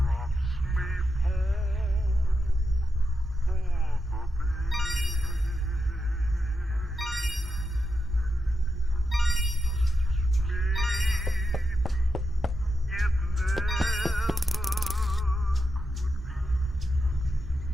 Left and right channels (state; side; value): normal; both; correlation 0.87